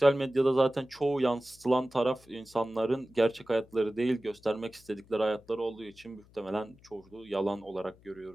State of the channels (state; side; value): noise; left; hum, 27 dB below the sound